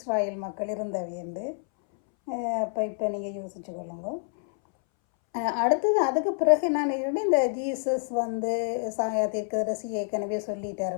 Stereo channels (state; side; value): silent; right; 60 dB below the other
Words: மக்கள் இருந்தவையண்டு. இப்போ நீங்கள் யோசிச்சு கொள்ளுங்க. அடுத்தது அதுக்கு பிறகு நான் இந்த ஜீசஸ் தீர்க்கதரிசி ஏற்கனவே சொல்லிட்டார்,